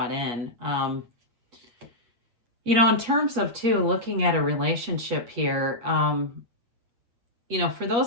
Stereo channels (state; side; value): late; left; 8.4 ms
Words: in. In terms of, too, looking at a relationship here, for